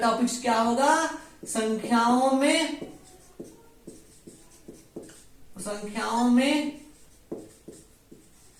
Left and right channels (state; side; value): identical; both; correlation 1.00